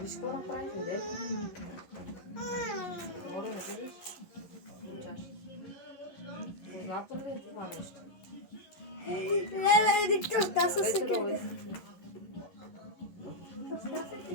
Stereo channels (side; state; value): right; late; 11 ms